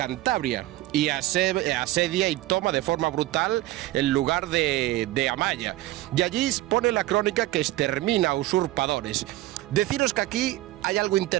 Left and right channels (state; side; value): quieter; left; 16.7 dB